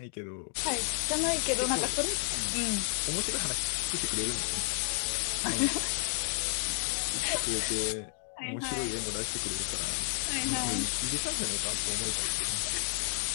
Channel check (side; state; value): right; silent; 57 dB below the other